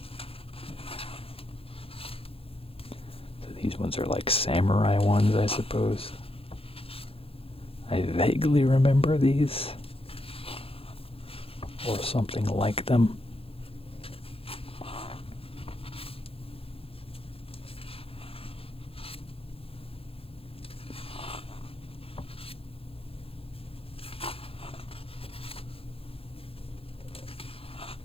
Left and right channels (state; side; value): late; right; 0.27 ms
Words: These ones are like samurai ones, I suppose. I vaguely remember these. Or something like them.